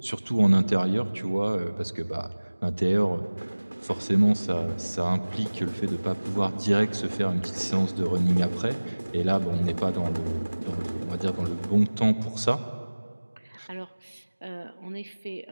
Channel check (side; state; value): both; inverted; correlation -1.00